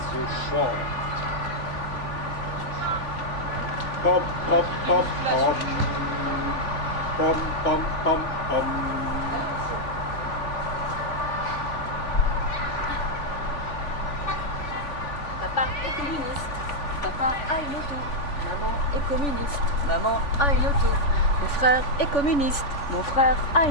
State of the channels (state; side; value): late; right; 3.5 ms